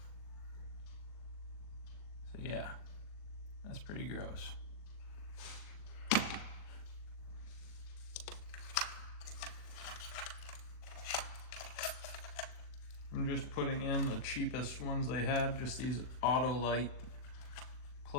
So yeah, that's pretty gross. I'm just putting in the cheapest ones they had, just these Autolite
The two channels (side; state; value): right; late; 39 ms